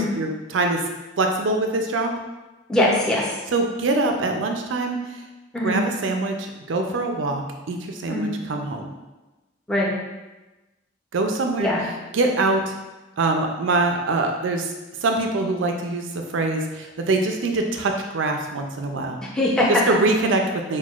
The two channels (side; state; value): both; normal; correlation 0.20